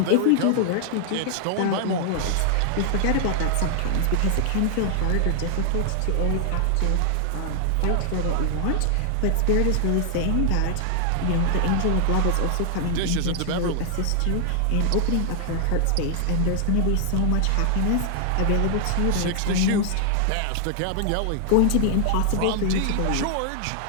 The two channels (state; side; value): different; both; correlation 0.00